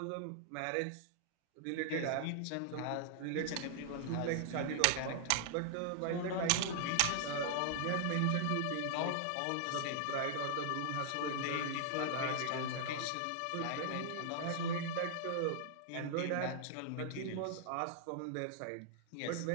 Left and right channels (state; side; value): different; both; correlation -0.01